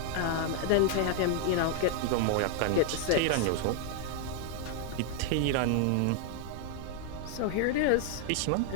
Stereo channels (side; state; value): both; different; correlation 0.00